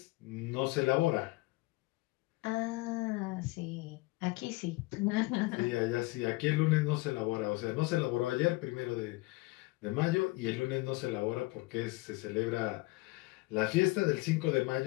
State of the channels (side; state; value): right; quieter; 22.5 dB